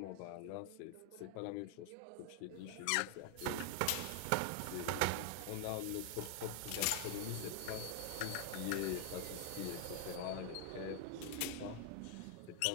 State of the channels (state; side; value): different; both; correlation 0.00